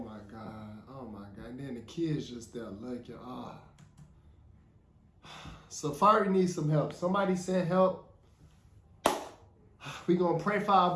God. Oh my God. And then the kids just there looking. Safaree needs some help. Somebody send help. We gonna pray for our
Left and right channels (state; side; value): identical; both; correlation 1.00